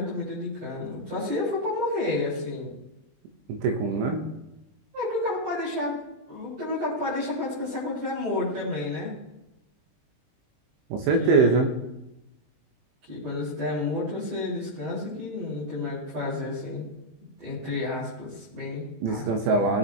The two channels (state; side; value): late; left; 20 ms